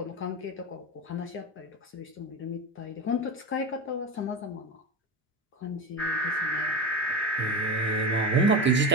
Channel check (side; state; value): both; normal; correlation 0.22